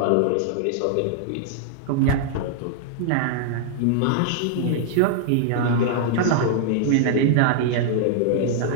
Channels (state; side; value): different; both; correlation -0.01